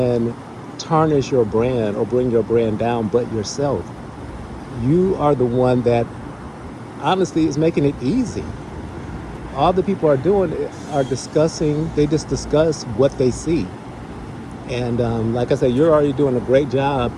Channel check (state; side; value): identical; both; correlation 1.00